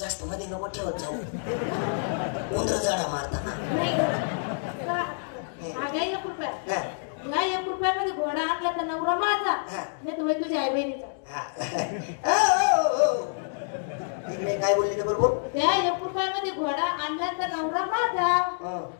मध्ये नको ठेवत जाऊ. उंदर जाडा मारताना. नाही 1 रुपया. नाही 1 रुपयामध्ये घोडा आणला तर नवरा माझा, नाही तर तुझ्या आई बहिणीचा. इकडे काय बोलली बरोबर. त्या 1 रुपयामध्ये घोडा आणला तर नवरा माझा,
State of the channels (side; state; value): right; silent; digital silence